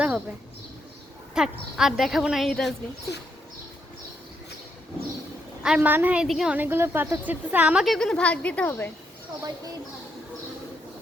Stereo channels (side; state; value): both; normal; correlation 0.78